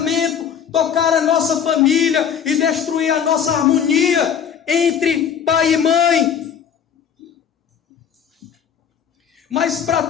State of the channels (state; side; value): quieter; right; 7.9 dB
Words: tocar a nossa família e destruir a nossa harmonia entre pai e mãe. Mas para